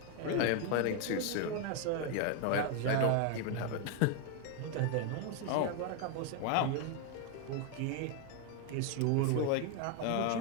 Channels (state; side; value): different; both; correlation 0.01